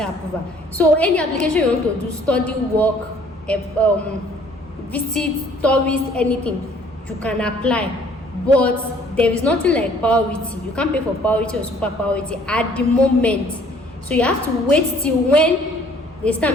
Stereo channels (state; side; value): normal; both; correlation 0.58